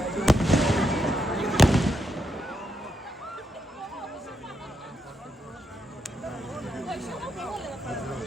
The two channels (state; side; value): normal; both; correlation 0.82